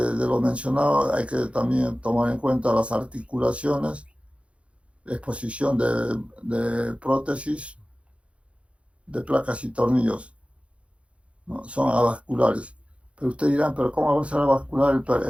lo mencionado, hay que también tomar en cuenta las articulaciones, exposición de prótesis, de placas y tornillos, ¿no? Son avasculares. Pero ustedes dirán, ¿pero cómo va a ser avascular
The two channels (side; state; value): left; late; 0.061 ms